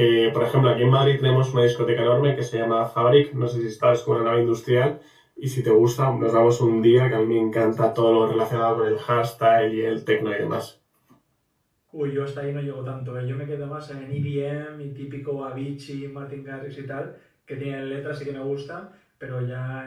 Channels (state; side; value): identical; both; correlation 1.00